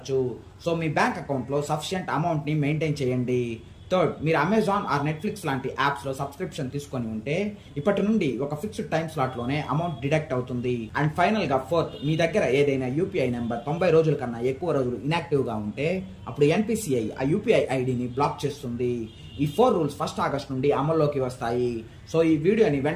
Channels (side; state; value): both; identical; correlation 1.00